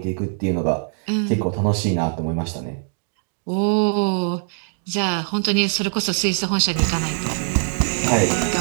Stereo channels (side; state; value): left; silent; 57 dB below the other